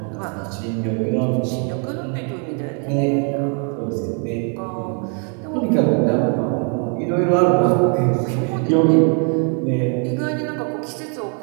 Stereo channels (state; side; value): quieter; left; 39.8 dB